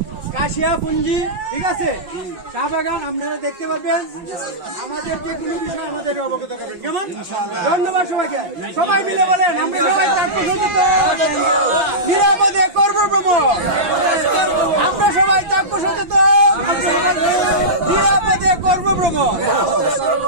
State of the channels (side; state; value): left; late; 5.9 ms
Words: কাশিয়া পুঞ্জি, ঠিক আছে? চা বাগান আপনারা দেখতে পাবেন। আমাদের যে কোনো বিষয় আমাদের অবগত করবেন, কেমন? ধন্যবাদ সবাইকে। সবাই মিলে বলেন, আমরা সবাই থাকবো সচেতন, নিরাপদে করবো ভ্রমণ। আমরা সবাই থাকবো সচেতন, নিরাপদে করবো ভ্রমণ।